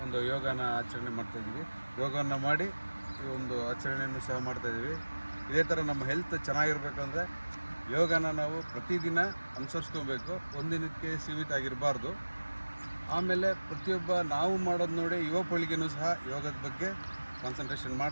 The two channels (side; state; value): both; inverted; correlation -1.00